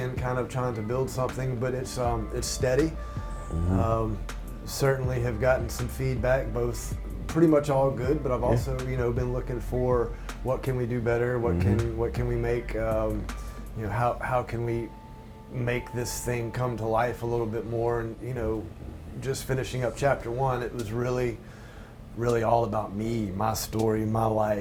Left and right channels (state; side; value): identical; both; correlation 1.00